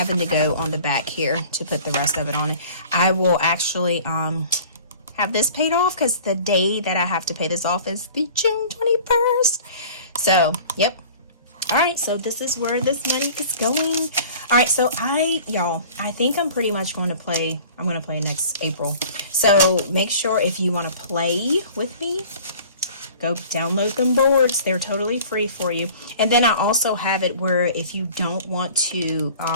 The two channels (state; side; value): inverted; both; correlation -0.46